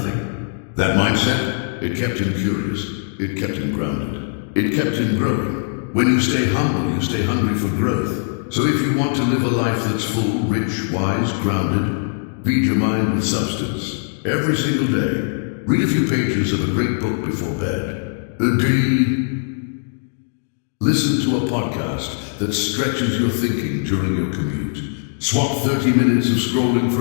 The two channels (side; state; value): right; silent; digital silence